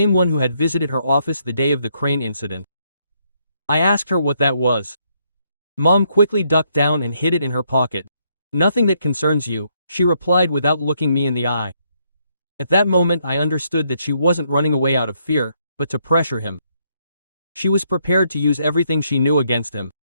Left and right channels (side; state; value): both; inverted; correlation -0.73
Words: one who had visited her office the day of the crane incident. I asked her what that was. Mom quickly ducked down and hid it in her pocket. "Nothing that concerns you," she replied without looking me in the eye. At that moment I understood that she wasn't running away out of fear, but to pressure him. She was prepared to use everything she knew against him.